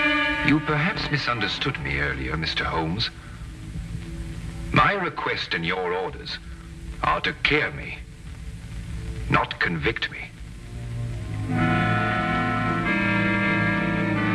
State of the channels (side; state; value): both; identical; correlation 1.00